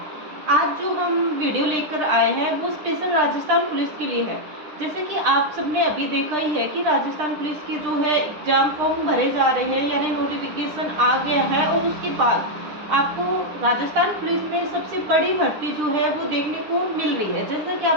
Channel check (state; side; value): late; left; 9.9 ms